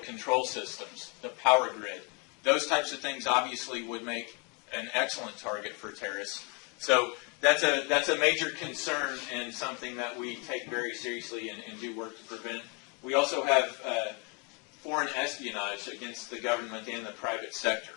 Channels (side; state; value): right; quieter; 31.5 dB